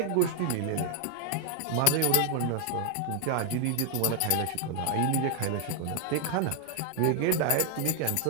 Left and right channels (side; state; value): both; different; correlation 0.00